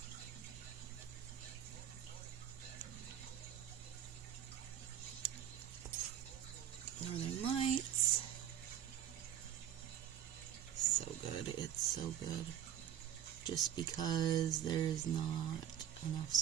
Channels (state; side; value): quieter; left; 10.4 dB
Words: Northern Lights. So good. It's so good. Just because there's not enough